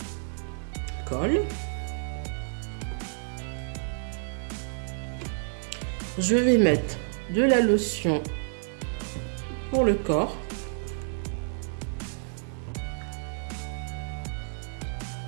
colle. Je vais mettre de la lotion pour le corps.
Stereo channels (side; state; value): left; silent; 58 dB below the other